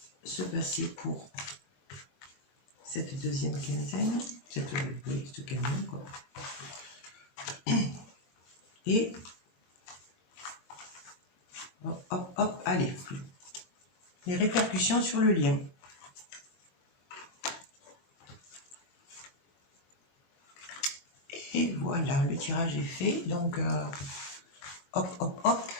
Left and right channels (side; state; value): right; late; 21 ms